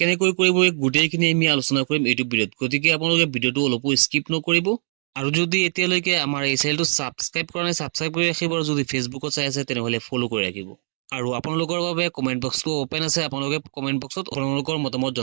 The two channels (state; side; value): silent; left; 59 dB below the other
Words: কৰিব, গোটেইখিনি আমি আলোচনা কৰিম এইটো ভিডিঅ'ত। গতিকে আপোনালোকে ভিডিঅ'টো অলপো স্কিপ নকৰিব। আৰু যদি এতিয়ালৈকে আমাৰ এই চেনেলটো ছাবস্ক্ৰাইব কৰা নাই, ছাবস্ক্ৰাইব কৰি ৰাখিব। আৰু যদি ফেচবুকত চাই আছে তেনেহ'লে ফ'ল' কৰি ৰাখিব। আৰু আপোনালোকৰ বাবে কমেণ্ট বক্সটো অপেন আছে, আপোনালোকে কমেণ্ট বক্সত আপোনালোকৰ মতামত